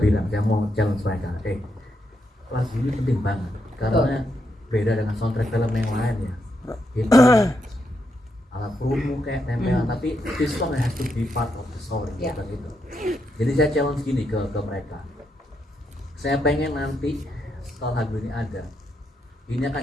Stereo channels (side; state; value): both; normal; correlation 0.81